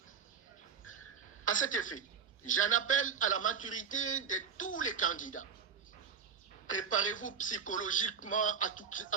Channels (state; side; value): quieter; left; 6.6 dB